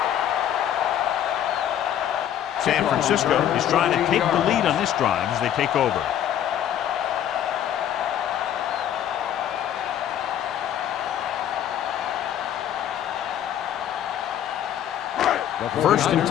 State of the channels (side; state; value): right; quieter; 10.5 dB